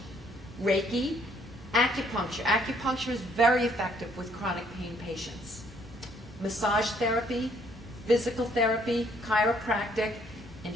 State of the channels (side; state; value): both; normal; correlation 0.65